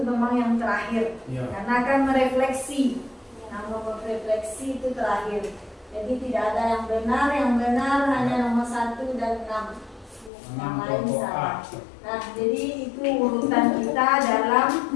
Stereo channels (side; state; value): right; drops out; at 10.3 s